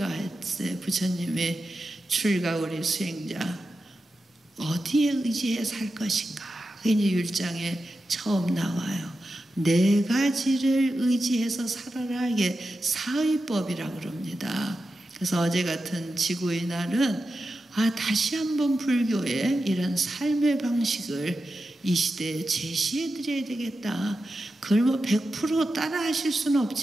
부처님의 출가 우리 수행자 어디에 의지해 살 것인가. 그게 이제 율장에 처음 나와요. 네 가지를 의지해서 살아라. 이게 사의법이라고 그럽니다. 그래서 어제 같은 지구의 날은 다시 한번 불교의 이런 삶의 방식을 이 시대에 제시해 드려야 되겠다. 그걸 뭐 100% 따라 하실 수는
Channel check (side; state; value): both; normal; correlation 0.91